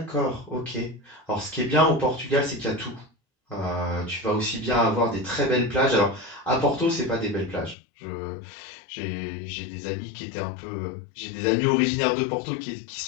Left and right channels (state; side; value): drops out; right; at 7.8 s